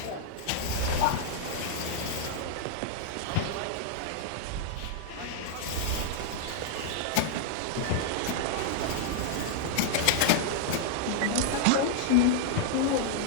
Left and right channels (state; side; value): different; both; correlation -0.01